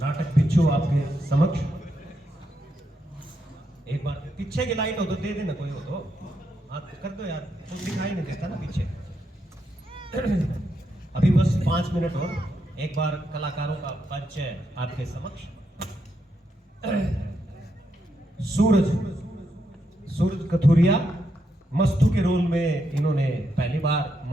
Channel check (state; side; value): normal; both; correlation 0.81